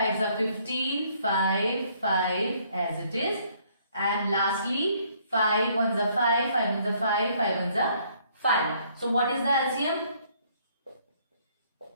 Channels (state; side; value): inverted; both; correlation -0.65